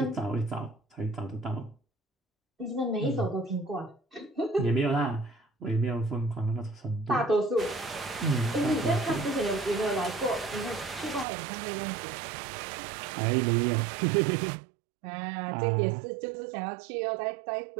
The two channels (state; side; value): drops out; left; at 11.2 s